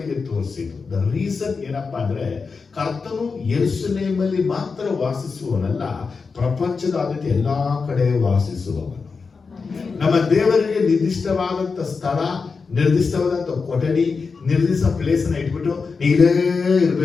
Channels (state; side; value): quieter; right; 4.8 dB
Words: ತೋರಿಸಿದ್ರು. ದ ರೀಸನ್ ಏನಪ್ಪಾ ಅಂದ್ರೆ, ಕರ್ತನು ಯೆರೂಸಲೇಮಲ್ಲಿ ಮಾತ್ರ ವಾಸಿಸುವವನಲ್ಲ, ಪ್ರಪಂಚದಾದ್ಯಂತ ಎಲ್ಲಾ ಕಡೆ ವಾಸಿಸುವವನು. ನಮ್ಮ ದೇವರಿಗೆ ನಿರ್ದಿಷ್ಟವಾದಂತ ಸ್ಥಳ, ನಿರ್ದಿಷ್ಟವಾದಂತ ಕೊಠಡಿ, ನಿರ್ದಿಷ್ಟ ಪ್ಲೇಸ್ ಅನ್ನ ಇಟ್ಬಿಟ್ಟು ಇಲ್ಲೇ